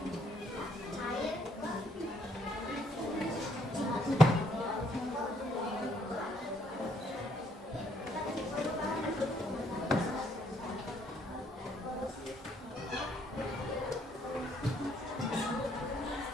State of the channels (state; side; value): normal; both; correlation 0.68